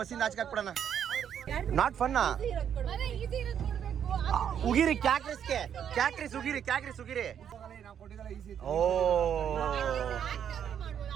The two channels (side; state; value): left; quieter; 8.8 dB